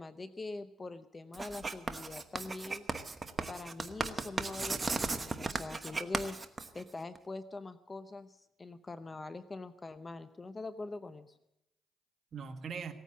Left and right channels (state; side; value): normal; both; correlation 0.90